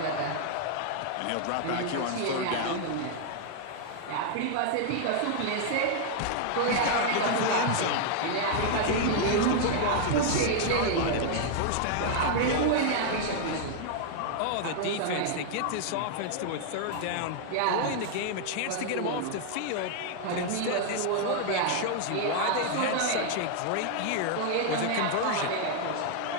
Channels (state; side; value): different; both; correlation 0.00